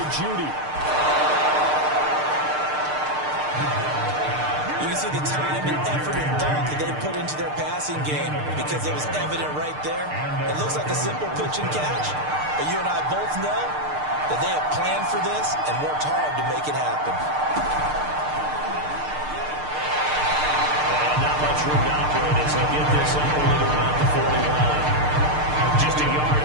Judy. You can see the time and effort and thought that they put into their passing game because it was evident right there. It looks like a simple pitch and catch, but you and I both know that they have planned for this and worked hard to make it happen. And not much room to operate as they get this up only to about the 41. Just a yard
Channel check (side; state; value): left; late; 6.6 ms